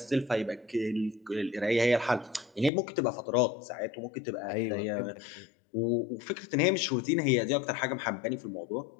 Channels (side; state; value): right; drops out; at 2.7 s